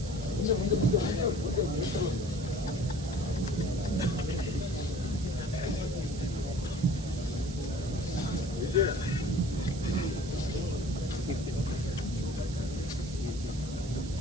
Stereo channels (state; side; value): noise; right; hiss, 14 dB below the sound